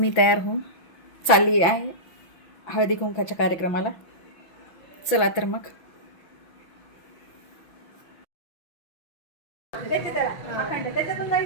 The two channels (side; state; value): right; late; 5.9 ms